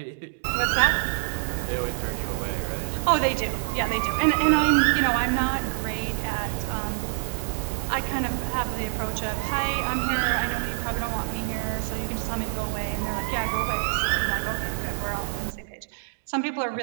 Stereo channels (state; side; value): silent; left; digital silence